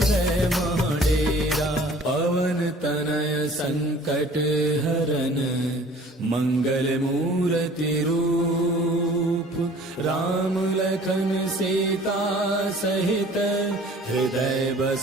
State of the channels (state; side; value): normal; both; correlation 0.49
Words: महडेरा पवन तनय संकट हरन मंगल मूर्ति रूप राम लखन सीता सहित हृदय